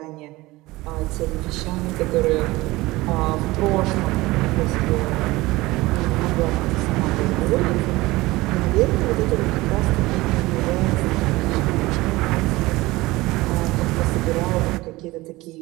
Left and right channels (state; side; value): quieter; left; 19.9 dB